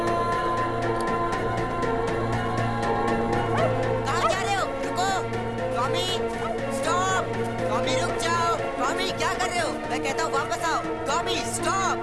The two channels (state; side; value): identical; both; correlation 1.00